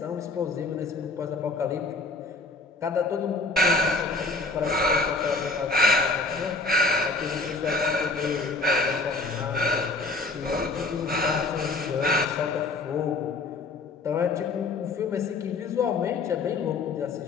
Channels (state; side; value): quieter; right; 3.5 dB